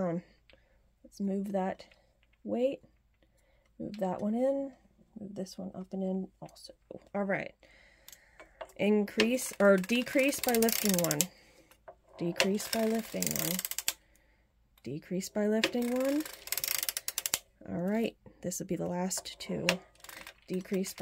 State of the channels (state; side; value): identical; both; correlation 1.00